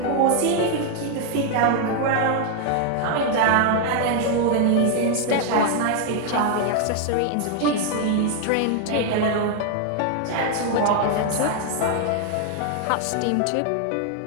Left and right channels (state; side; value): different; both; correlation 0.00